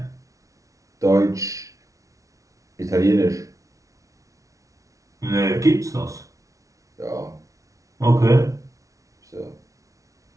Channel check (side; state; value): left; late; 0.16 ms